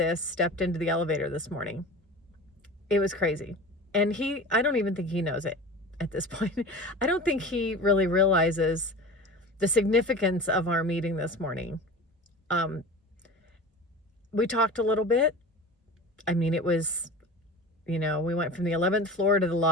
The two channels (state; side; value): normal; both; correlation 0.35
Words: stepped into the elevator this morning. It was crazy. And I don't even think he knows it at this point. I don't think he really realizes the significance of our meeting this morning. We talked a little bit. I mean, it was, we went from the 11th floor to the